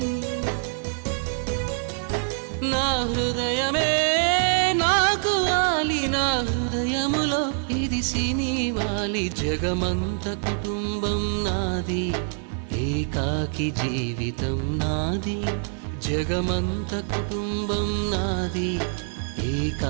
నా హృదయమే నాకు వాలి, నా హృదయములో ఇది సినివాలి. జగమంత కుటుంబం నాది, ఏకాకి జీవితం నాది. జగమంత కుటుంబం నాది,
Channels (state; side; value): silent; left; 58 dB below the other